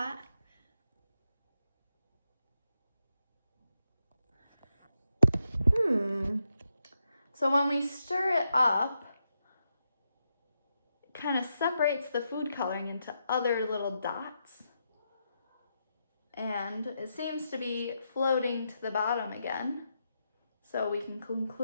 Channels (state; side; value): inverted; both; correlation -0.84